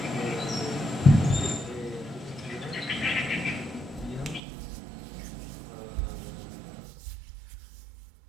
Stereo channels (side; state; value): left; drops out; at 4.4 s